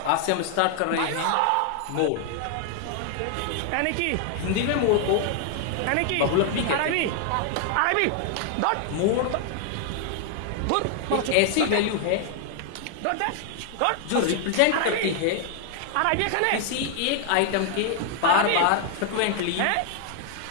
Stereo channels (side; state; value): both; different; correlation 0.00